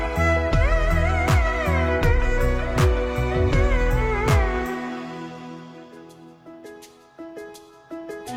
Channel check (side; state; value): both; identical; correlation 1.00